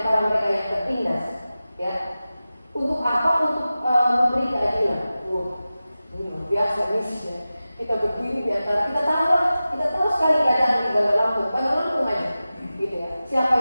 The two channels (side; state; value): both; inverted; correlation -0.95